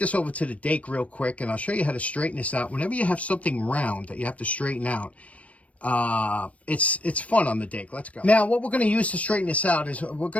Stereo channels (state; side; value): late; right; 0.065 ms